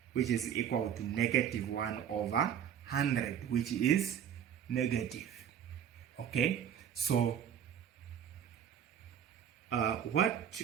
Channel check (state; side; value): quieter; left; 9.1 dB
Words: which is equal to negative 1 over 100, which is negative. Okay, so what